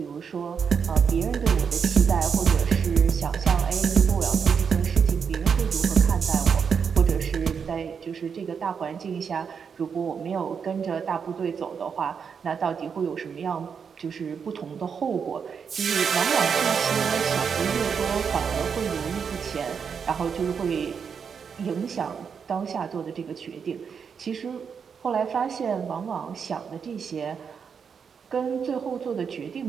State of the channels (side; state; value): left; quieter; 6.5 dB